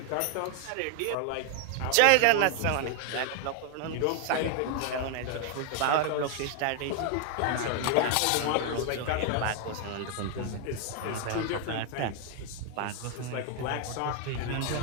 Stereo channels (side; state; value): both; different; correlation 0.00